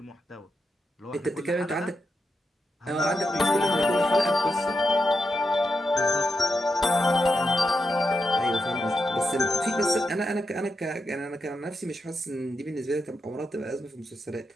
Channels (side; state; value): both; normal; correlation 0.85